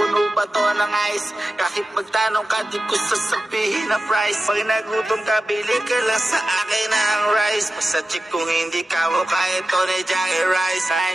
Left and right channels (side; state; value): both; normal; correlation 0.94